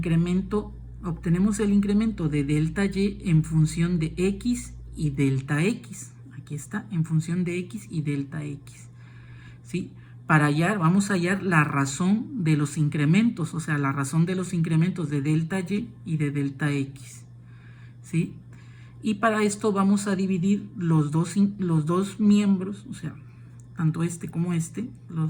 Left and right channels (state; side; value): identical; both; correlation 1.00